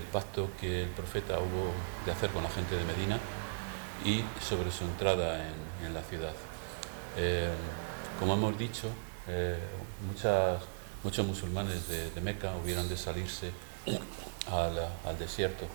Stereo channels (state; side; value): quieter; left; 38.0 dB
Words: pacto que el profeta hubo de hacer con la gente de Medina y sobre su entrada en la ciudad. Como hemos dicho, muchos musulmanes de Meca hubieron de salirse al desierto